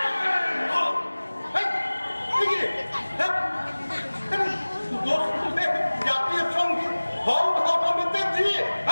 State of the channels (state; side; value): inverted; both; correlation -1.00